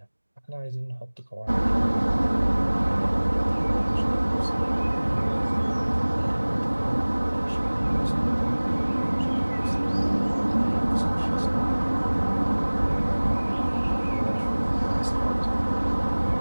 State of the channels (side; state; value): both; inverted; correlation -1.00